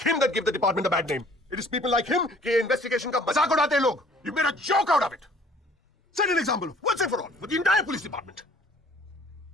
him that give the department a bad name. It is people like him कि investigation का मजाक उड़ाते हैं लोग. You made a joke out of it. Set an example once and for all with the entire police department.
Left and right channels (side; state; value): both; normal; correlation 0.55